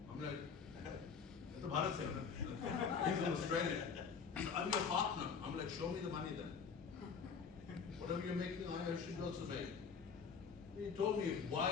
I'm like, it's a Bharat se hai. He's an Australian. I'm your partner. I'm like, show me the money then. Whatever you're making, I should also make. He told me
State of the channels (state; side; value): quieter; right; 6.0 dB